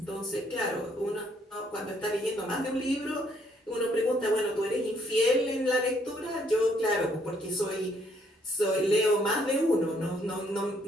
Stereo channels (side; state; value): both; normal; correlation 0.68